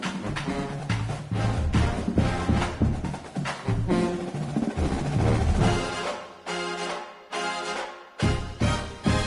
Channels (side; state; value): both; identical; correlation 1.00